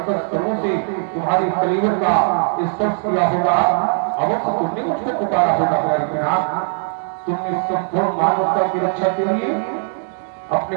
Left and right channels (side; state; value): left; silent; 58 dB below the other